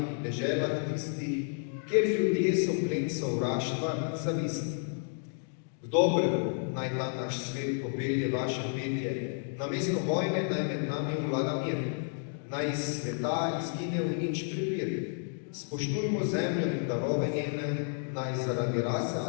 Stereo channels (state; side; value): silent; right; 57 dB below the other